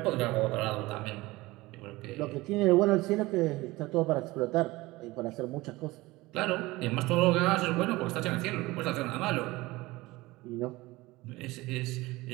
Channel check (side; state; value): left; quieter; 20.3 dB